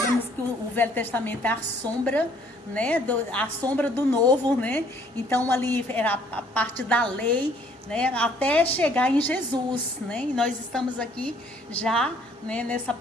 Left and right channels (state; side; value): normal; both; correlation 0.61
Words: que o Velho Testamento é a sombra, né, a sombra do Novo, né? Então ali era a parte da lei, né, até chegar em Jesus, né? E nós estamos aqui já, né, nessa